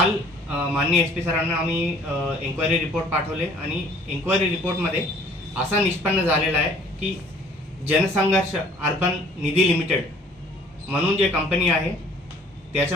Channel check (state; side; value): normal; both; correlation 0.55